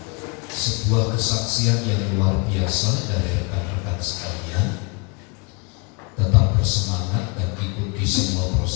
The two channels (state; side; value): quieter; right; 32.1 dB